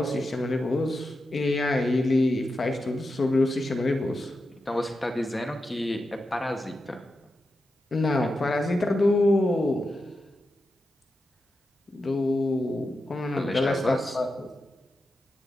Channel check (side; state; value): both; normal; correlation 0.89